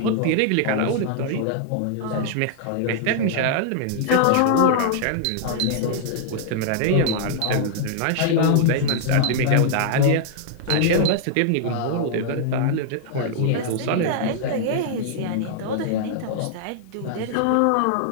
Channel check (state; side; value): different; both; correlation -0.01